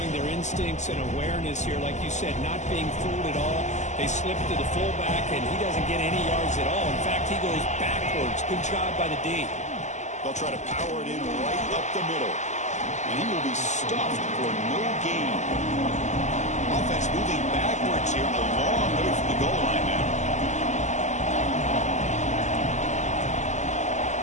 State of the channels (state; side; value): late; right; 0.34 ms